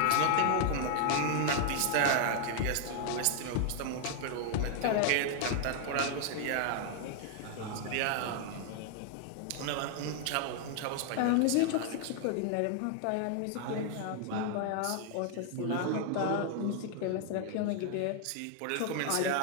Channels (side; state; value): both; different; correlation 0.00